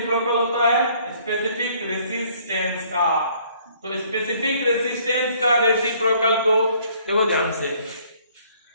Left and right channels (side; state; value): both; inverted; correlation -0.61